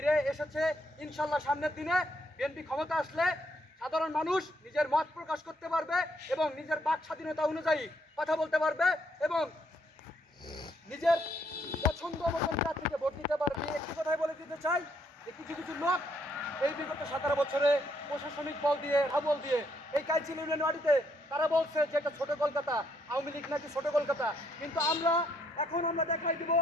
এসেছে। ইনশাল্লাহ সামনের দিনে বিএনপি ক্ষমতা আসলে সাধারণ মানুষ নিজের মত প্রকাশ করতে পারবে এবং নিজের বাক স্বাধীনতা অনুযায়ী কথা বলতে পারবে এবং নিজের পছন্দ মতন প্রার্থীকে ভোট দিতে পারবে। একটি কথাই বলে দিতে চাই যে কিছু কিছু লোক এই বিগত 17 বছরে প্রশাসনিক বল দিয়ে, হাবল দিয়ে এই কাইচিল ইউনিয়ন ওয়ার্ডে তারা বলছে যে এটা ছোট কলকাতা, আওয়ামী লীগ নাকি ছোট কলকাতা। কিন্তু আমরা দেখাই দিব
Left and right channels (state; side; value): normal; both; correlation 0.72